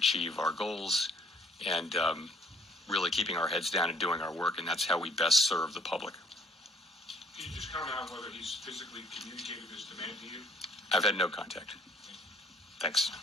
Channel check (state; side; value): normal; both; correlation 0.60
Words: our goals and really keeping our heads down and doing our work, and that's how we best serve the public. Can you just comment on whether he's physically communicated this demand to you? I've had no contact. Thanks.